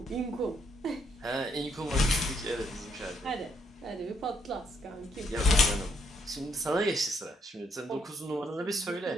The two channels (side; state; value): both; normal; correlation 0.73